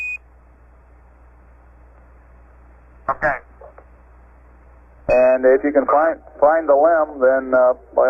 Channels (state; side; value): identical; both; correlation 1.00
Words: Okay. And if you can find the limb, then by